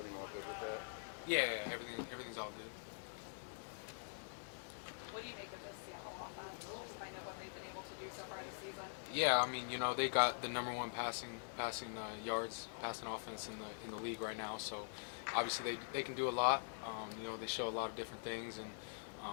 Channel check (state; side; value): silent; right; digital silence